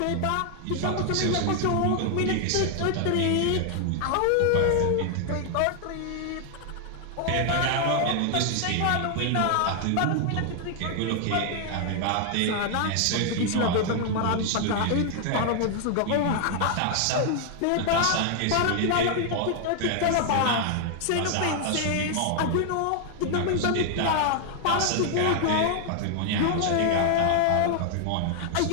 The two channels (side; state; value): both; different; correlation 0.00